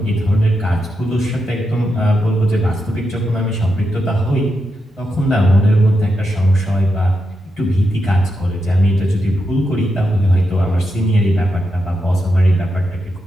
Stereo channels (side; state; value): both; normal; correlation 0.85